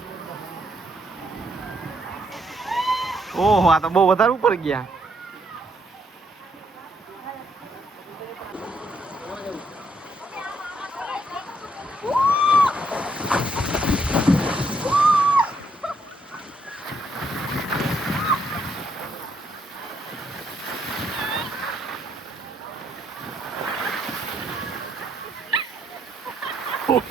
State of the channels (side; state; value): both; normal; correlation 0.73